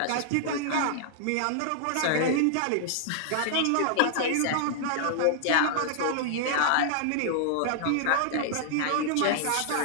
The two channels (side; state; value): both; different; correlation -0.01